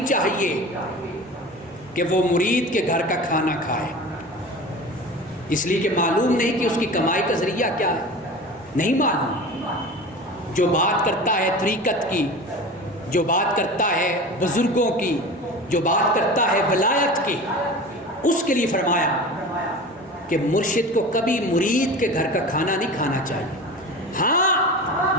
چاہیے کہ وہ مرید کے گھر کا کھانا کھائے، اس لیے کہ معلوم نہیں کہ اس کی کمائی کا ذریعہ کیا ہے، نہیں معلوم۔ جو بات کرتا ہے طریقت کی، جو بات کرتا ہے بزرگوں کی، جو بات کرتا ہے ولایت کی، اس کے لیے فرمایا کہ مرشد کو کبھی مرید کے گھر کا کھانا نہیں کھانا چاہیے،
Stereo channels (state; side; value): normal; both; correlation 0.34